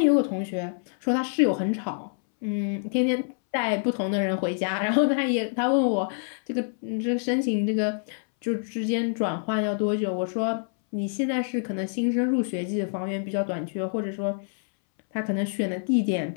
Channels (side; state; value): right; silent; 61 dB below the other